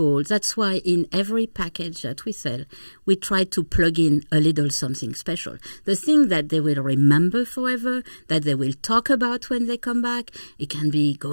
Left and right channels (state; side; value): inverted; both; correlation -1.00